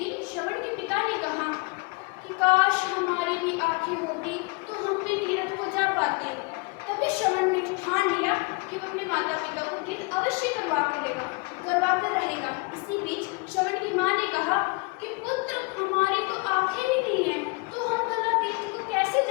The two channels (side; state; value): right; quieter; 29.5 dB